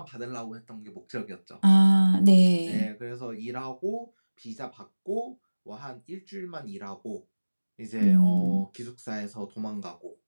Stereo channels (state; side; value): inverted; both; correlation -1.00